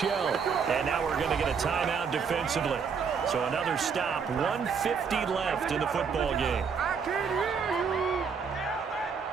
And now we're going to get a timeout defensively. So another stop. 1:50 left in the football game.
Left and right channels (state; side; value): quieter; left; 6.1 dB